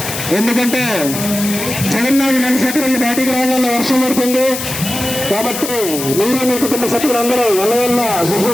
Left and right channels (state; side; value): noise; left; hiss, 6 dB below the sound